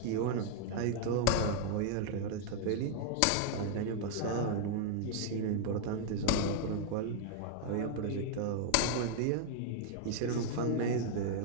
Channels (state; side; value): different; both; correlation 0.00